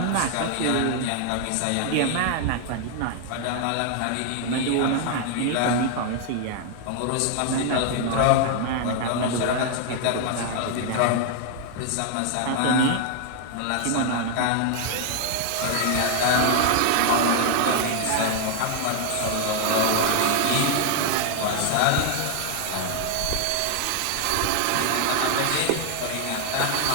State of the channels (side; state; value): both; different; correlation 0.00